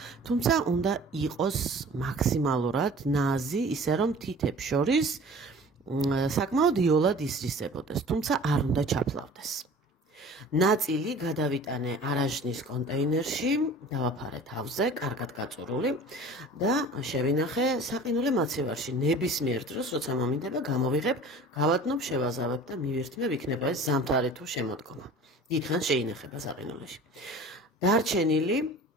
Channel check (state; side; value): normal; both; correlation 0.43